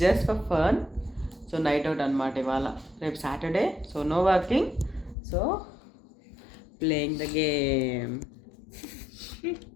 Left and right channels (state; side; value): drops out; right; at 5.2 s